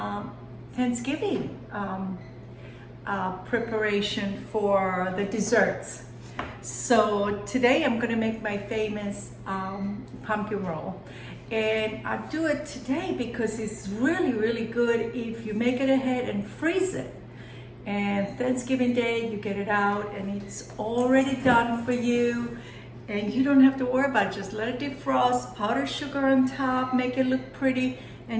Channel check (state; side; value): identical; both; correlation 1.00